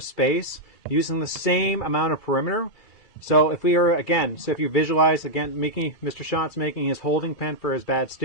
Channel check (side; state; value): right; late; 2.4 ms